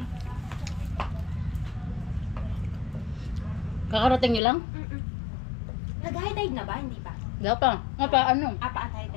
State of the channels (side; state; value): right; drops out; at 4.4 s